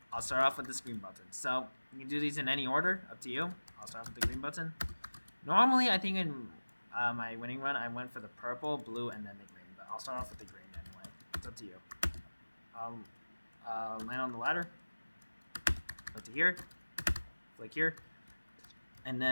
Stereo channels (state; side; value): inverted; both; correlation -1.00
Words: I'll start off with this green button. So you can do these in any order, up to you. I'll start off with the green button. Normally, I think in my winning run, I went for the purple, blue, and then the green. But I'll start off with the green anyway. It's up to you. Land on the ladder. Go to here. Flick here. And